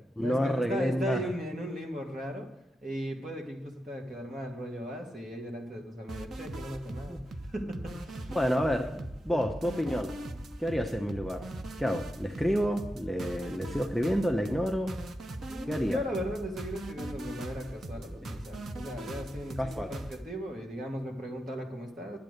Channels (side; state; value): both; normal; correlation 0.88